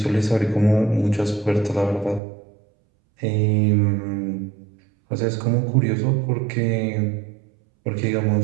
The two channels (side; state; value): left; drops out; at 2.2 s